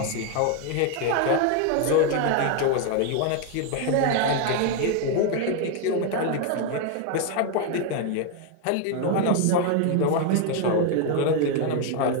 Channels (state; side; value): different; both; correlation 0.01